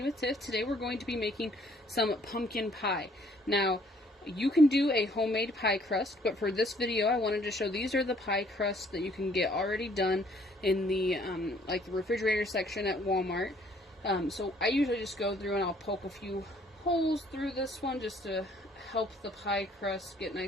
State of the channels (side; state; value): both; normal; correlation 0.62